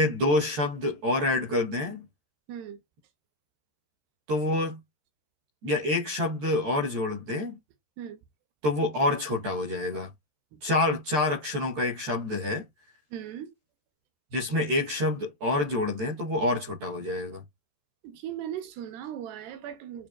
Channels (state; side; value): late; left; 13 ms